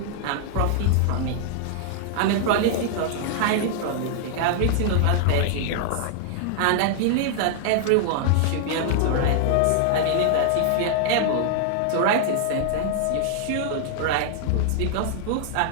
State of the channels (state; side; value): different; both; correlation -0.01